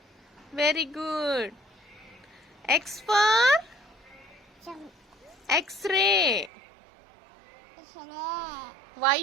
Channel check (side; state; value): left; drops out; at 6.5 s